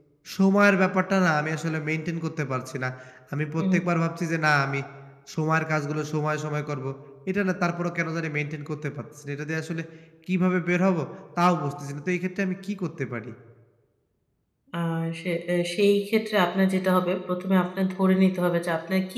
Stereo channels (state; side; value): identical; both; correlation 1.00